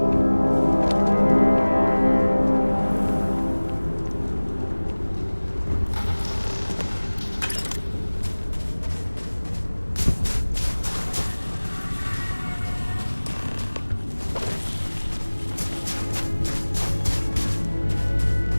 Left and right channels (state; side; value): inverted; both; correlation -1.00